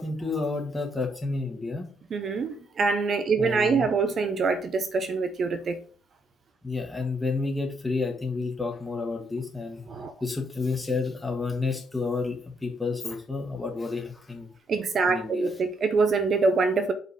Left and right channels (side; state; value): both; normal; correlation 0.75